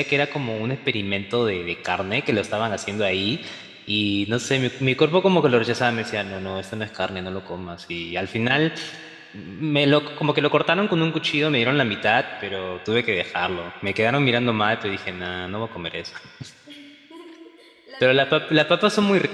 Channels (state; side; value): identical; both; correlation 1.00